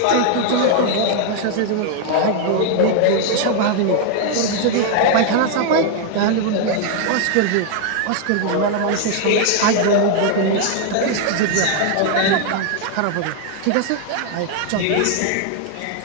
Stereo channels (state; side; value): different; both; correlation 0.00